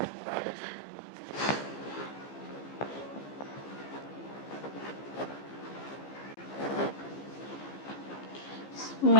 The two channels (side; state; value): right; late; 15 ms